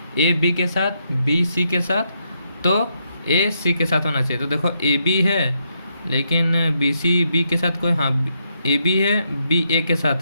ए बी के साथ बी सी के साथ तो ए सी के साथ होना चाहिए। तो देखो ए बी है लेकिन बी सी बी के साथ कोई, हाँ ए बी है बी ए के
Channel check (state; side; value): inverted; both; correlation -0.79